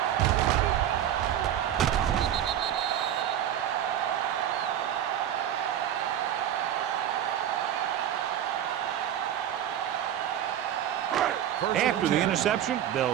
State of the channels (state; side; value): quieter; left; 10.7 dB